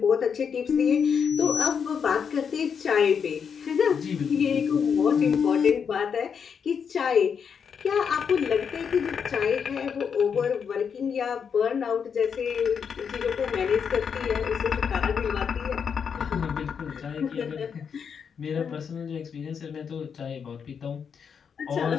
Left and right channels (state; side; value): quieter; right; 6.8 dB